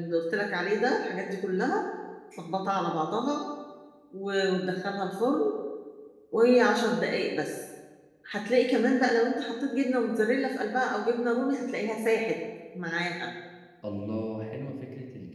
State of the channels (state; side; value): identical; both; correlation 1.00